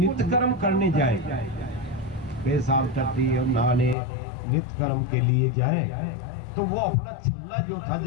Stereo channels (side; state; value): right; drops out; at 4.0 s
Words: कर्म करने जाए, पेशाब टट्टी और नहाने नित्य कर्म के लिए जाए, तो वो अपना छल्ला जो था,